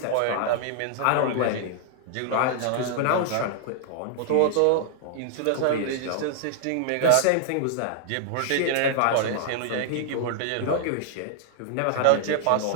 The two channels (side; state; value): both; different; correlation -0.01